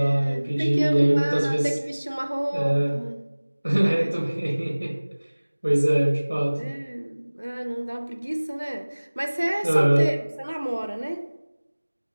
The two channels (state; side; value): inverted; both; correlation -1.00